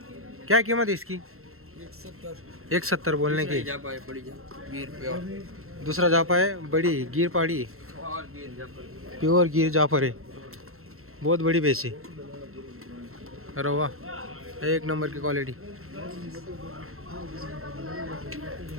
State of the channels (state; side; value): late; left; 0.62 ms